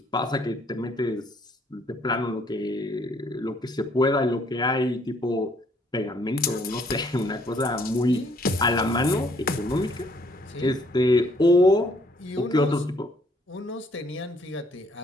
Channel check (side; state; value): both; normal; correlation 0.64